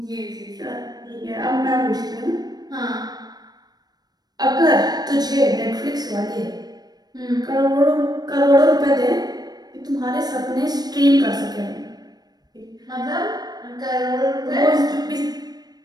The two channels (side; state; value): left; late; 0.19 ms